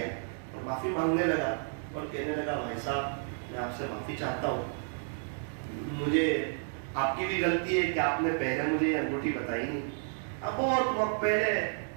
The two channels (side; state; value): left; silent; 57 dB below the other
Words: اور معافی مانگنے لگا اور کہنے لگا بھائی صاحب میں آپ سے معافی چاہتا ہوں, مجھے آپ کی بھی غلطی ہے کہ آپ نے پہلے مجھے یہ انگوٹھی بتائی نہیں. اب بہت وقت پہلے